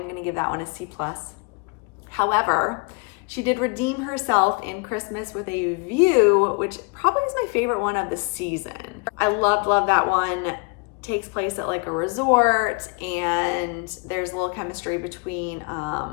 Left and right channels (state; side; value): quieter; right; 32.7 dB